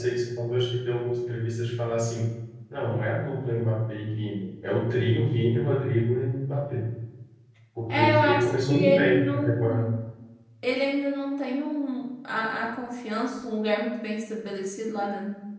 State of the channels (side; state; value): both; identical; correlation 1.00